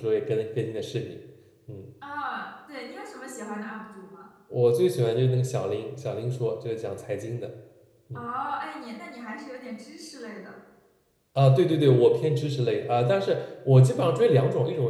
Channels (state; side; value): identical; both; correlation 1.00